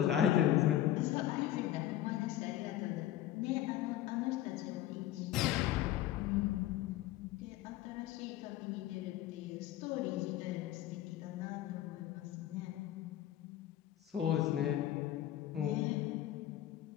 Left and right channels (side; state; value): right; quieter; 12.9 dB